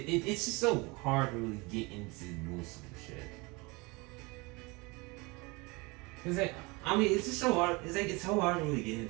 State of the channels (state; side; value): quieter; left; 26.1 dB